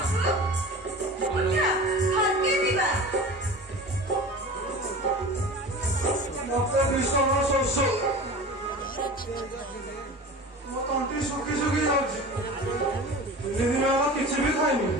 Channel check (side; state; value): both; normal; correlation 0.36